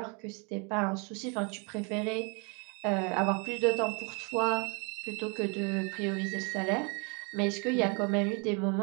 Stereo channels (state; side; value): quieter; left; 34.1 dB